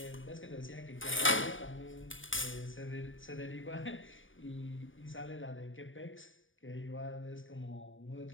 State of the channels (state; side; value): late; right; 0.57 ms